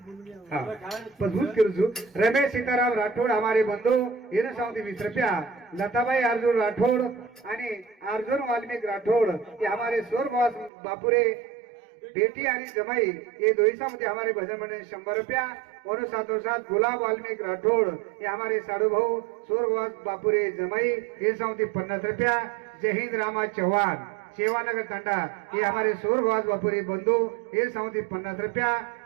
हां पजूत करू रमेश सीताराम राठोड हमारे बंधु येने साउथी 20 रुपया लताबाई अर्जुन राठोड आणि अर्जुन वाल्मिक राठोड ये हमारे स्वर्गवास बापुरे बेटी आणि जमाई ये दोईसामध्ये हमारे भजन मंडळ 100 रुपया और साथों साथ गुलाब वाल्मिक राठोड ये हमारे साडू भाऊ स्वर्गवास बापुरे जमाई ये साउथी 50 रुपया जय हिंद रामा चौहान सेवानगर टांडा ये हमारे स्वर्गवास बापुरे बंधु ये साउथी 50 रुपया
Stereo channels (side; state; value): left; drops out; at 10.7 s